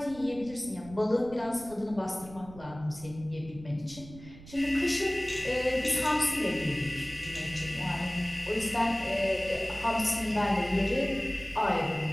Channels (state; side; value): noise; right; rumble, 18 dB below the sound